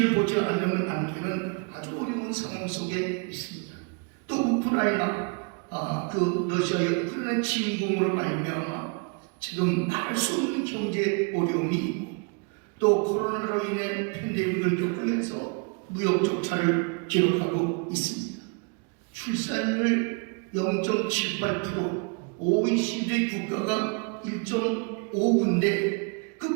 보지 않으면 남기는 아주 어려운 상황 속에 있습니다. 또 우크라이나 그 러시아의 우크라이나 침공으로 말미암아 지금 말할 수 없는 경제 어려움이 있고 또 코로나로 인해 팬데믹을 겪으면서 무역 적자를 기록하고 있습니다. 출산율 0.78%, OECD 국가가 1.5인데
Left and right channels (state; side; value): quieter; left; 34.6 dB